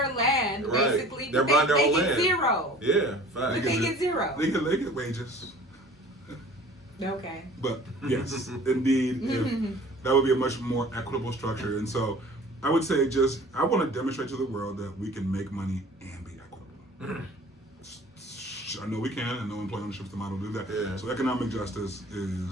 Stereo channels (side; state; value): both; normal; correlation 0.47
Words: land, Right. basically, They're but buying their they own get land. zero. Yeah. But Fact. they get zero. they get wages. Okay. But yes, indeed, that would be a much more equitable structure. And so I would say I want to demonstrate to the world that we can make money and be equitable. I know we can. I know employee ownership is the model to do that. Yeah. So economic justice